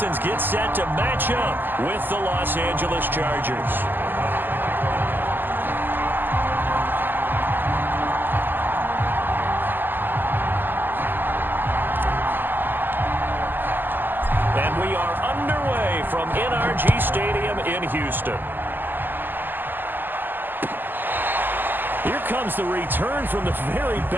get set to match up with the Los Angeles Chargers. And we are underway from NRG Stadium in Houston. Here comes the return from the very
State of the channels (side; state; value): left; late; 0.091 ms